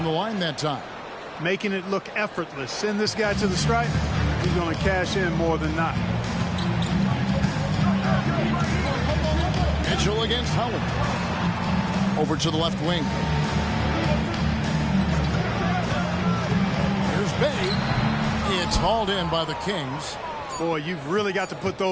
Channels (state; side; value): identical; both; correlation 1.00